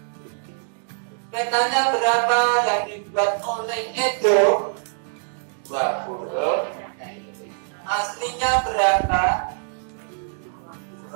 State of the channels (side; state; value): left; silent; digital silence